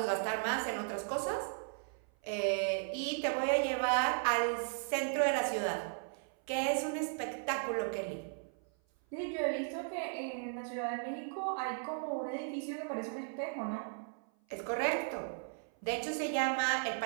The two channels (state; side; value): silent; left; 54 dB below the other